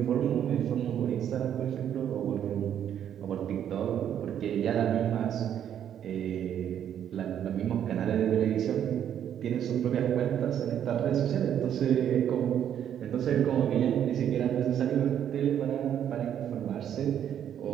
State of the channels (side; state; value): left; quieter; 9.7 dB